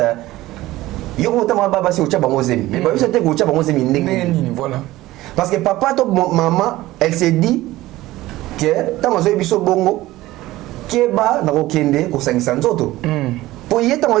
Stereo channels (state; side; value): quieter; left; 17.1 dB